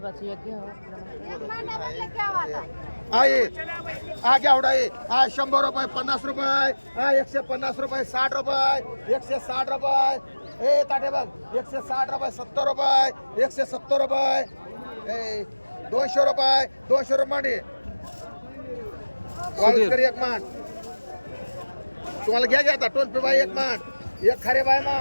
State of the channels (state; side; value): inverted; both; correlation -1.00